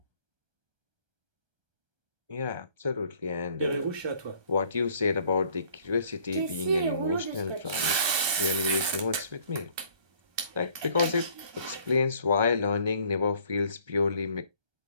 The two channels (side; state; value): left; late; 1.2 ms